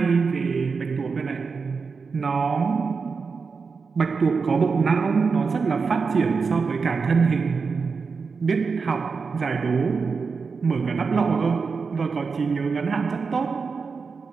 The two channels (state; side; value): quieter; left; 5.0 dB